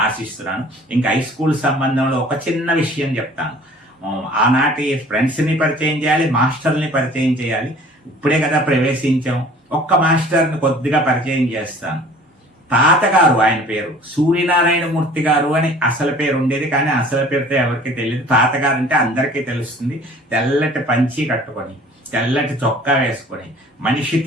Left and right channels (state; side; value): normal; both; correlation 0.49